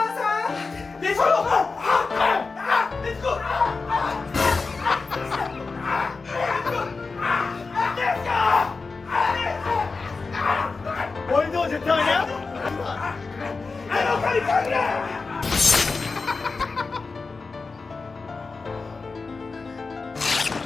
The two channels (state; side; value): quieter; right; 4.2 dB